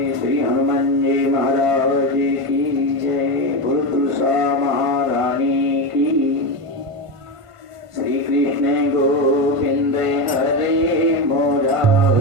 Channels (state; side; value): late; left; 1.5 ms